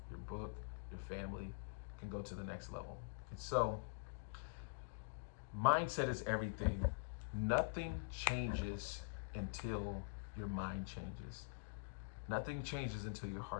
your book, your family can go to the next level. And so mindset is everything. Nothing changes until your mind changes. Nothing changes until your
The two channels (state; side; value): quieter; right; 34.6 dB